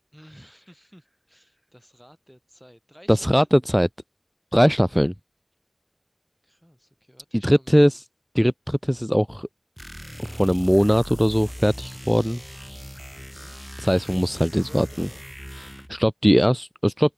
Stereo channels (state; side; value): identical; both; correlation 1.00